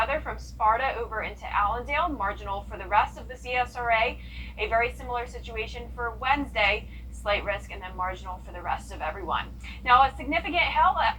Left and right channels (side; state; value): both; identical; correlation 1.00